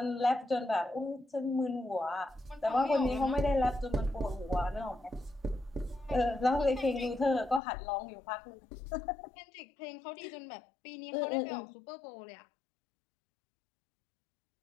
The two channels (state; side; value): drops out; right; at 7.6 s